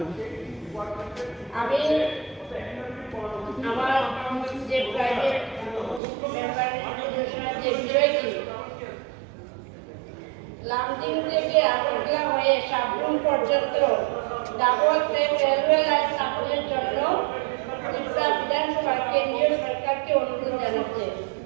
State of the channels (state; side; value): drops out; left; at 6.0 s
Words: আমি আমার যে প্রাইভেট মেম্বার যে বিষয়টি লামডিং থেকে আগরতলা হয়ে সাবরুম পর্যন্ত ডাবল ট্রেন রেলওয়ে লাইন স্থাপনের জন্য ত্রিপুরা বিধানসভা কেন্দ্রীয় সরকারকে অনুরোধ জানাচ্ছে।